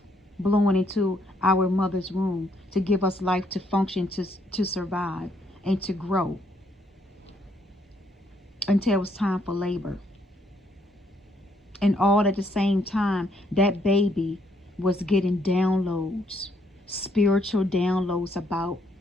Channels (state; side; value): normal; both; correlation 0.71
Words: blowing into our mother's womb to give us life, to function, to survive, and to grow until it was time for labor. And all at the same time, that baby was getting downloads, spiritual downloads about